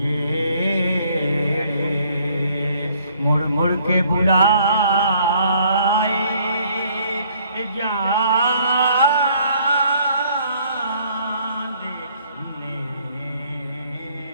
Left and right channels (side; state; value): both; inverted; correlation -0.62